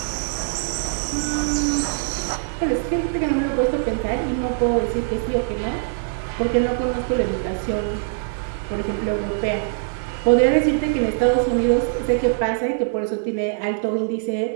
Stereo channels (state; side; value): silent; left; digital silence